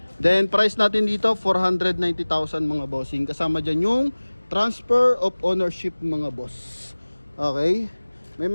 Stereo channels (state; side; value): inverted; both; correlation -1.00